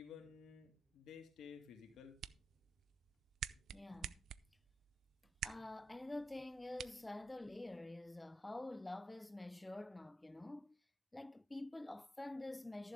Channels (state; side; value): normal; both; correlation 0.87